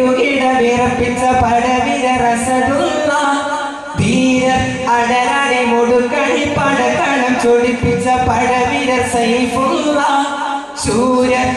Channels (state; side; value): identical; both; correlation 1.00